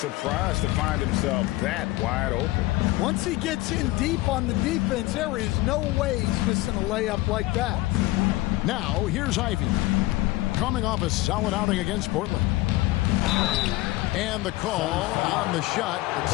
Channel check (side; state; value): right; quieter; 19.1 dB